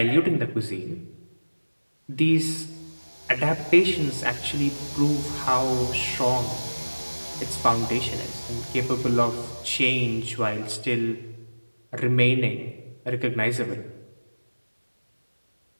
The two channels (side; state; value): both; inverted; correlation -1.00